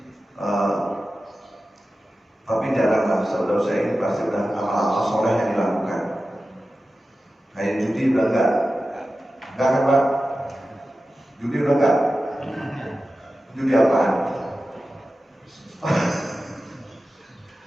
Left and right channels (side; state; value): both; normal; correlation 0.94